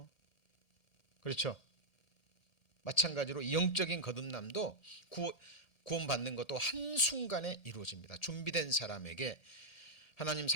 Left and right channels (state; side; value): late; right; 1.7 ms